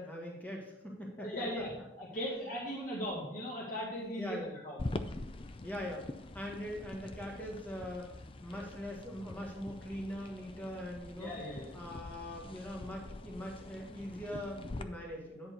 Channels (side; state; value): both; normal; correlation 0.59